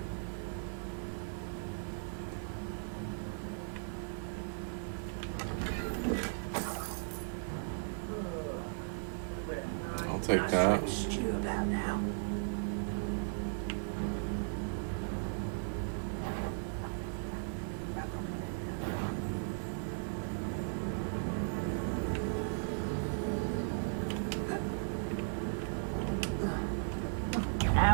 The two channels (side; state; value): left; silent; 53 dB below the other